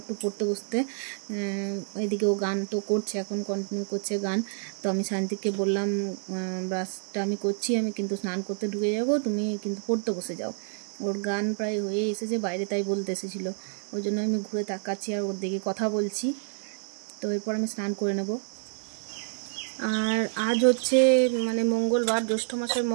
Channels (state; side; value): silent; left; 58 dB below the other